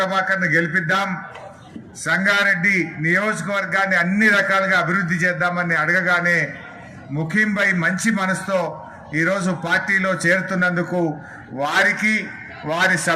గెలిపిద్దాం, సంగారెడ్డి నియోజకవర్గాన్ని అన్ని రకాలుగా అభివృద్ధి చేద్దామని అడగగానే ముఖీం భాయ్ మంచి మనసుతో ఈరోజు పార్టీలో చేరుతున్నందుకు వారికి వారి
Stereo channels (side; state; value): both; identical; correlation 1.00